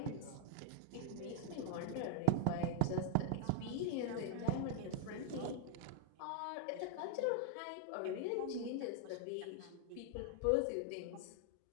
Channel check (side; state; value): both; different; correlation 0.00